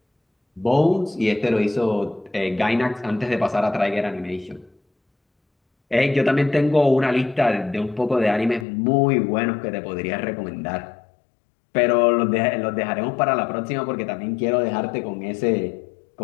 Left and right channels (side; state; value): right; drops out; at 8.7 s